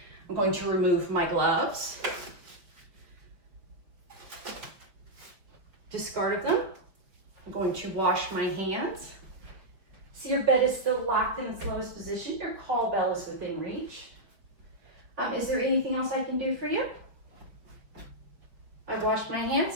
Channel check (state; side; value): late; left; 5.2 ms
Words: I'm going to remove my gloves, discard of them. I'm going to wash my hands. See, your bed is still locked in its lowest position. Your call bell is within reach. Is there anything else I can do for you? I've washed my